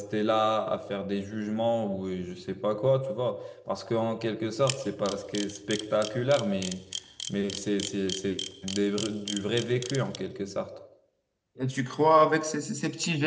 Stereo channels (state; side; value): identical; both; correlation 1.00